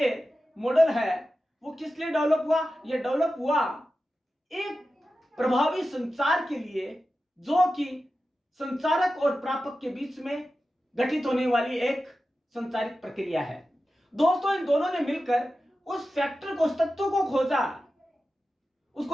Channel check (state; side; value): normal; both; correlation 0.93